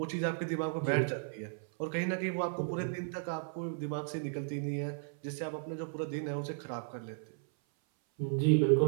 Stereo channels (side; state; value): left; silent; 55 dB below the other